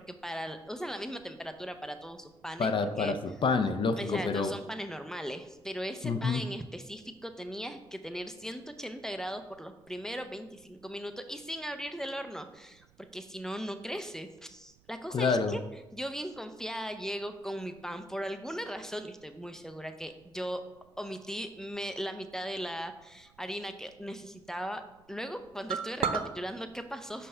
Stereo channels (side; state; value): right; noise; rumble, 27 dB below the sound